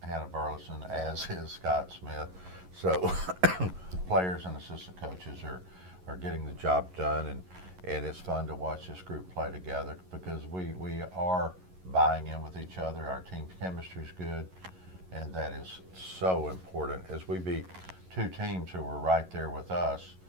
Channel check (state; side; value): late; left; 11 ms